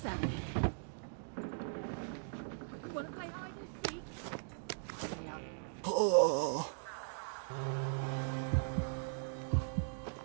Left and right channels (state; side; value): silent; left; digital silence